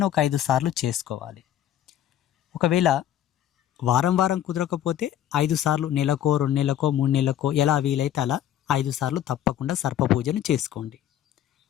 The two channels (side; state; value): right; quieter; 11.3 dB